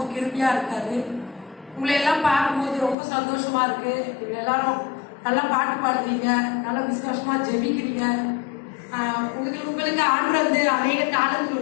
கிருபியா இருக்காரு. உங்களை எல்லாம் பார்க்கும்போது ரொம்ப சந்தோஷமா இருக்கு. நீங்க எல்லாரும் நல்லா பாட்டு பாடுறீங்க, நல்லா விசுவாசமா ஜெபிக்கிறீங்க. உங்களுக்கு ஆண்டு வந்து அநேக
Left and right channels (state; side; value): drops out; right; at 3.0 s